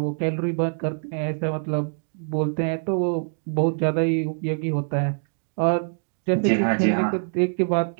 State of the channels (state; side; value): silent; left; digital silence